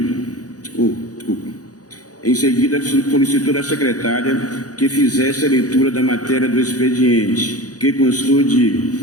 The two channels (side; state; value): right; late; 0.67 ms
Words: Em seguida, solicitou da secretária que fizesse a leitura da matéria do expediente, que constou de